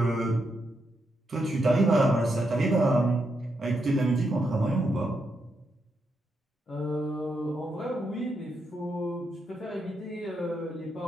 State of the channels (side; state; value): both; normal; correlation 0.82